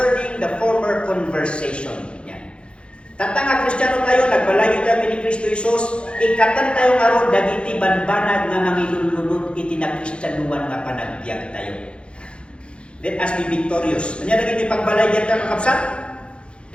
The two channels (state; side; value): late; right; 0.057 ms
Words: the former conversation. Yan. Tata nga Kristiyano tayo, nagbalayo tayo ni Kristo Jesus, ikatan tayo nga ron, dagiti banbanag nga mangilulunod iti na Kristyanuan nga panagbiag tayo. Let us be victorious. Kanya dagiti pagbalayan tayo kakabsat?